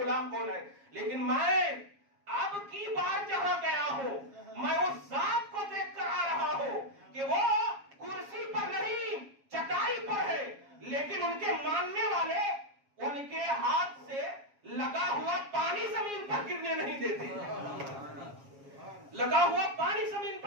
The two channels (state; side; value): late; left; 7.3 ms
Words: کون ہے. لیکن میں اب کی بار جہاں گیا ہوں میں اس ذات کو دیکھ کر آ رہا ہوں کہ وہ کرسی پر نہیں چٹائی پر ہے، لیکن ان کے ماننے والے ان کے ہاتھ سے لگا ہوا پانی زمین پر گرنے نہیں دیتے، لگا ہوا پانی زمین